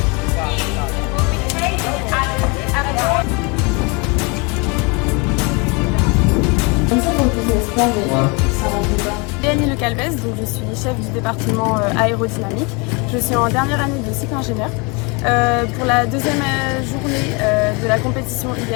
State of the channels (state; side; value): quieter; right; 30.1 dB